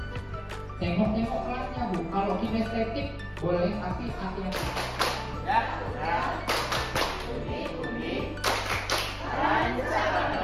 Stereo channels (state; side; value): identical; both; correlation 1.00